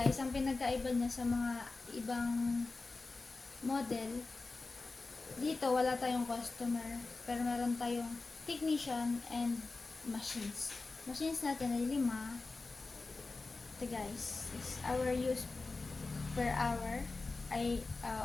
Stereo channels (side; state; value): right; quieter; 3.7 dB